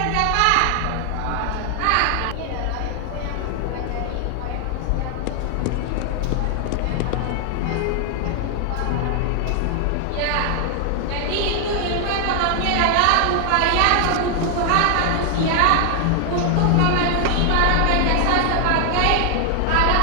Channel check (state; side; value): different; both; correlation 0.00